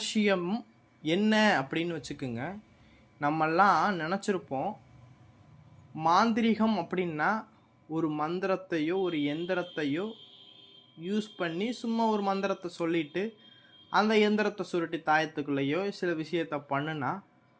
என்ன அப்படின்னு வச்சுக்கோங்க. நம்மெல்லாம் நினச்சிருப்போம் மாந்திரிகம் அப்படின்னா ஒரு மந்திரத்தையோ ஒரு எந்திரத்தையோ யூஸ் பண்ணி சும்மா ஒரு மந்திரத்தை சொல்லிட்டு அந்த எந்திரத்தை சுருட்டி தாயத்துக்குள்ளேயோ சில விஷயத்த பண்ணுனா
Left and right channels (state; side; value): identical; both; correlation 1.00